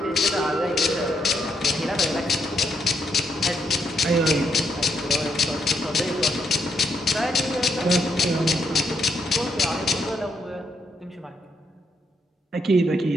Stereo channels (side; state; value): both; normal; correlation 0.76